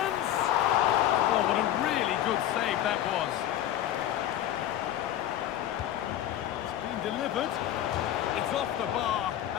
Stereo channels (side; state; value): right; quieter; 12.0 dB